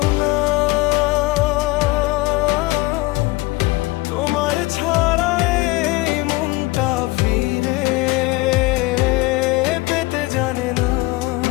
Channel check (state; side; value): quieter; right; 21.4 dB